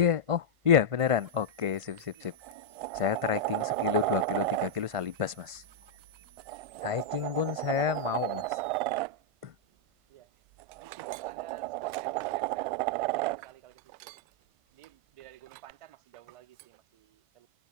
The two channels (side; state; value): left; late; 1.5 ms